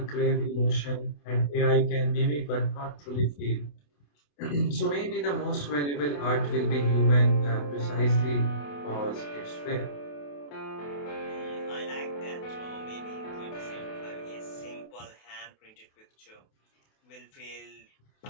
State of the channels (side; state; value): right; late; 28 ms